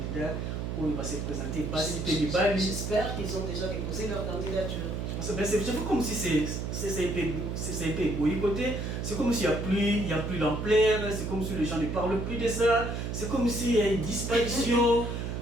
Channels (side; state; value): right; noise; hum, 3 dB below the sound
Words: où ils vont se présenter. J'espère qu'ils ont déjà déposé leur candidature. C'est comme si c'est un peu boycotté, c'est comme s'il n'y a plus l'ampleur, c'est comme si les gens ne parlent plus de ça, c'est comme s'il y a une disparition.